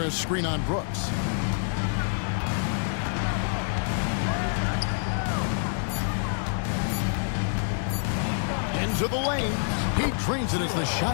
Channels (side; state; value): right; silent; digital silence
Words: screen on Brooks. into the lane. He drains it as the